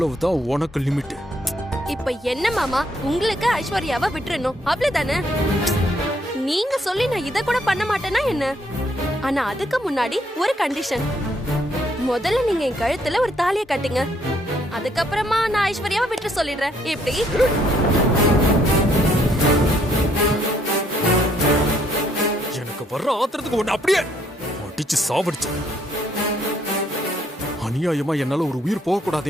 உனக்கு லிமிட். இப்ப என்ன மாமா, உங்களுக்கு ஐஸ்வர்யாவை விட்டுறணும் அவ்வளவுதானே? நீங்க சொல்லி நான் இத கூட பண்ண மாட்டேன்னா என்ன? ஆனா அதுக்கு முன்னாடி ஒரு கண்டிஷன். முதல்ல நீங்க என் கழுத்துல ஒரு தாலியை கட்டுங்க, அதுக்கப்புறமா நான் ஐஸ்வர்யாவை விட்டு சொல்லிடுறேன். எப்படி? எனக்கு வர்ற ஆத்திரத்துக்கு ஒண்ணு அப்படியே அடிச்சு சாவடிச்சு. அநியாயமா என்னால ஒரு உயிர் போக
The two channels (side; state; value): both; normal; correlation 0.69